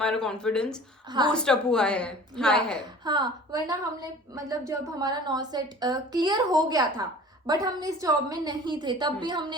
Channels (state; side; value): normal; both; correlation 0.44